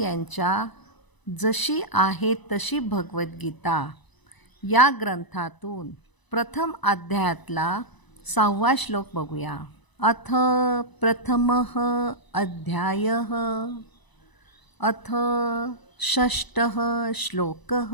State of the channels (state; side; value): late; right; 1.0 ms